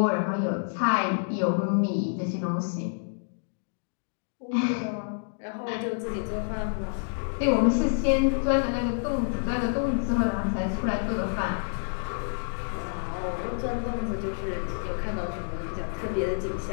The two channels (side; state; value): right; silent; digital silence